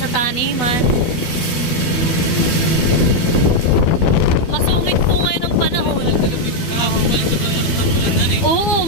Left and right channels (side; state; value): right; late; 12 ms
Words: taniman. Masungit po ngayon ang panahon. Oo,